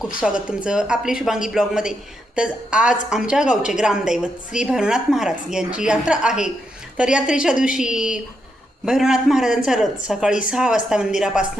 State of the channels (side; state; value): both; normal; correlation 0.81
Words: स्वागत तुमचं आपली शुभांगी ब्लॉगमध्ये. तर आज आमच्या गावचे ग्रामदैवत श्री भैरवनाथ महाराज यांची यात्रा आहे. तर यात्रेच्या दिवशी भैरवनाथ महाराजांचा रथ सकाळी 6 वाजता